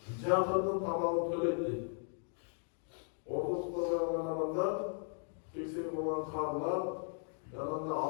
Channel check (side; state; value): right; silent; 53 dB below the other